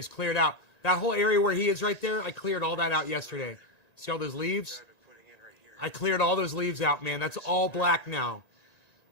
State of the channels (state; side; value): late; right; 1.9 ms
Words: cleared out. That whole area where he is right there, I cleared all that out yesterday. See all those leaves? I cleared all those leaves out, man. That's all black now.